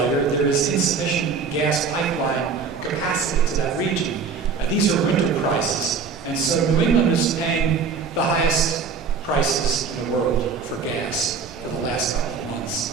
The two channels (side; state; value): left; quieter; 5.4 dB